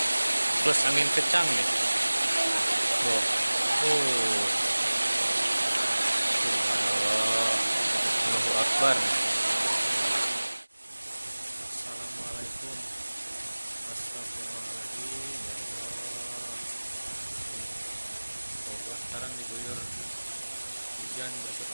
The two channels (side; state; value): both; inverted; correlation -1.00